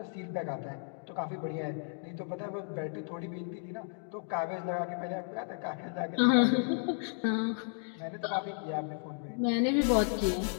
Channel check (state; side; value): silent; right; 55 dB below the other